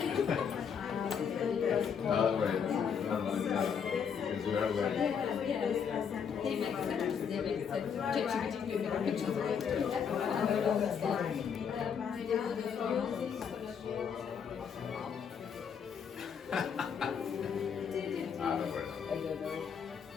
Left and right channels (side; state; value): right; quieter; 7.1 dB